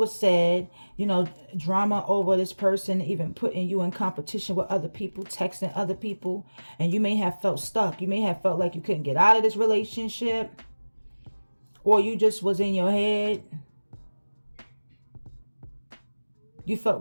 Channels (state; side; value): inverted; both; correlation -1.00